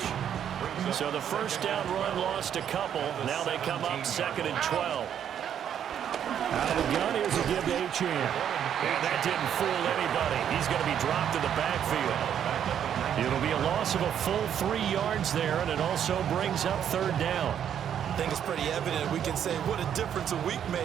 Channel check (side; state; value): left; quieter; 9.2 dB